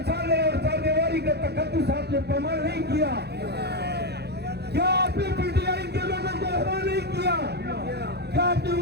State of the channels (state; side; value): late; left; 0.48 ms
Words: चाले और चालेवारी का तकद्दुस आपने पामाल नहीं किया? क्या आपने पीटीआई के लोगों को हरा नहीं किया? क्या आपने